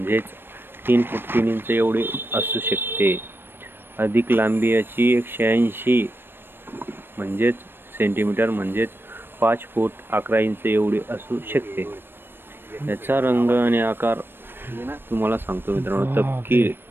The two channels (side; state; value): left; late; 0.10 ms